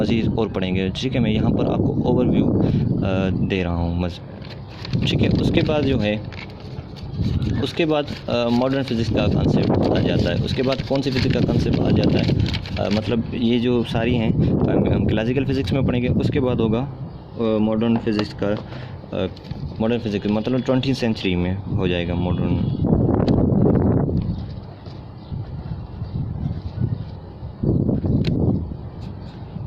और पढ़ेंगे, ठीक है। मैं यहाँ पर आपको ओवरव्यू दे रहा हूँ, ठीक है। उसके बाद मॉडर्न फिज़िक्स का कंसेप्ट आ जाता है। उसके बाद कौन सी फिज़िक्स का कंसेप्ट आ जाता है, मतलब ये जो सारी हैं हम क्लासिकल फ़िज़िक्स में पढ़ेंगे। उसके बाद होगा मॉडर्न फिज़िक्स मतलब 20वीं सेंचुरी में हो जाएगा मॉडर्न,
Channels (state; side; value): identical; both; correlation 1.00